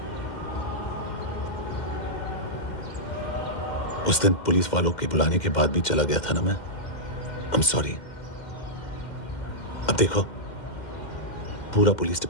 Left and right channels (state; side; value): late; right; 2.1 ms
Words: उस दिन पुलिस वालों के बुलाने के बाद भी चला गया था ना मैं। I'm sorry। अब देखो, पूरा पुलिस